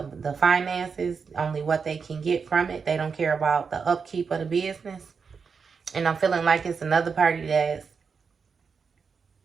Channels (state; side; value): quieter; left; 5.6 dB